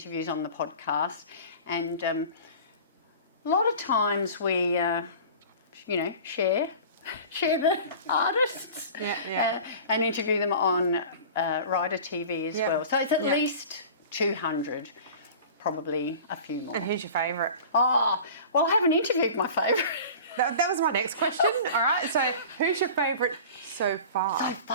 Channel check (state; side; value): inverted; both; correlation -0.39